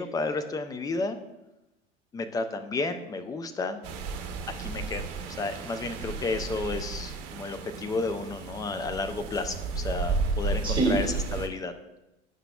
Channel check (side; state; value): both; normal; correlation 0.45